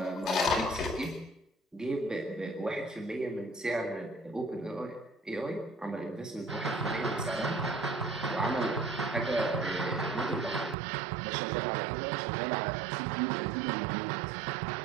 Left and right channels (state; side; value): drops out; left; at 10.8 s